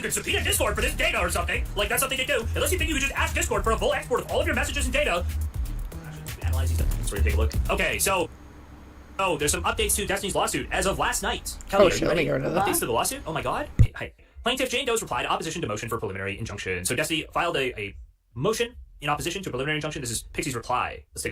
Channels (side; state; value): both; identical; correlation 1.00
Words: can subpoena Discord for this data or something, like that's something to do, unless you think you can just ask Discord for a full export of all of your messages and data. Analyze these things. Let's take a look. Okay, so, there's some updates to Destiny's lawsuit as of last night. Kelly, Oh, are shit, you let me ready? get rid of that. Updates to the lawsuit? Oh my god. Hi. Plaintiff Jane Doe's replied opposition to motion for preliminary injunction. So Destiny filed a motion in opposition to a preliminary injunction. This is Pixie's reply. Let's take